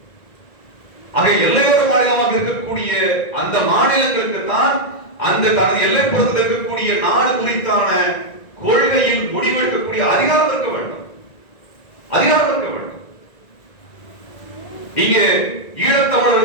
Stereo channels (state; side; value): late; right; 1.9 ms